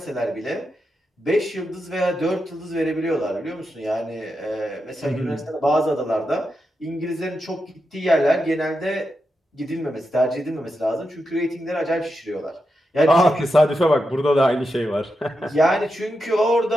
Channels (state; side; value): normal; both; correlation 0.87